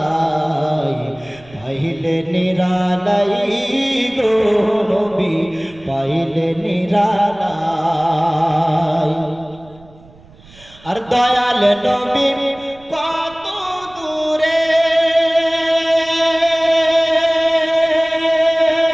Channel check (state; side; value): noise; right; rumble, 25 dB below the sound